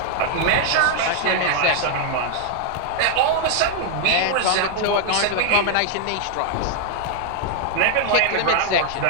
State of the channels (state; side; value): different; both; correlation 0.00